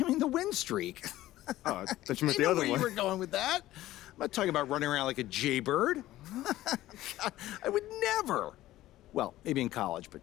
the win streak. Oh, I thought you meant I the know other where one. you were going with that. I'm not talking about running around like a jaybird. I would never. Well, maybe in college, but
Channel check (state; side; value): quieter; right; 15.3 dB